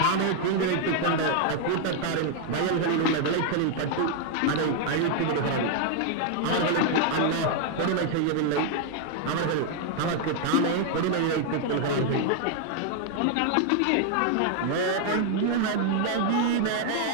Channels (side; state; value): both; different; correlation 0.00